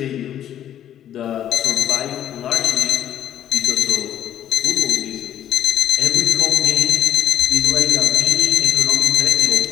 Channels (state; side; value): quieter; right; 10.9 dB